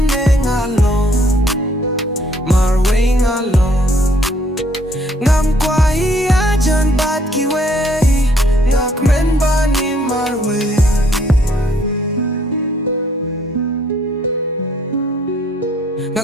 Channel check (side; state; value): both; normal; correlation 0.65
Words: ngalong Marwei ngalong Ngam kwah iaid bat kiwei kmen bani Marwei